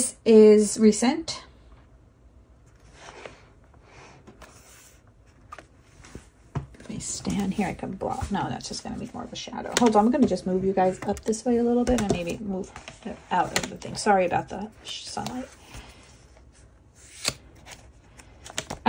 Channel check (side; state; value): both; identical; correlation 1.00